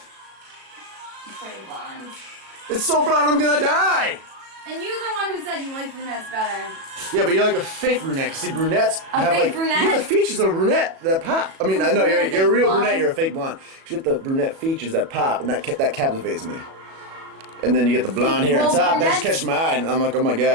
It's pretty blonde. It's so blonde I'm gonna die. And you're the one who said you like brunettes better. Yeah, but you're like a fake brunette. Cause see, brunettes have fake like brunette? you have the features of a brunette that pop. I mean, I know you're a real brunette. You're a fake blonde. You get the brunette features that pop, and that captivates me. And then you get the blonde hair on top. That just catches my eye, and I'm like, oh my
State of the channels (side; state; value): left; late; 37 ms